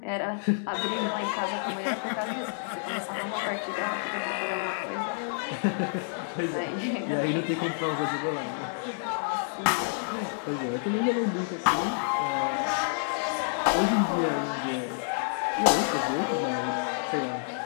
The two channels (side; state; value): right; silent; digital silence